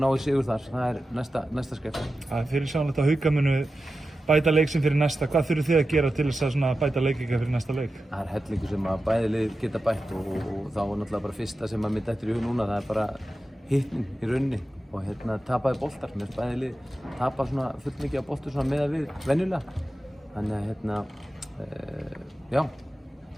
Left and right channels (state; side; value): normal; both; correlation 0.92